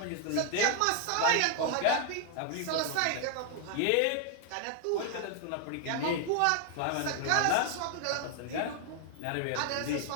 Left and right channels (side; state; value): both; different; correlation 0.00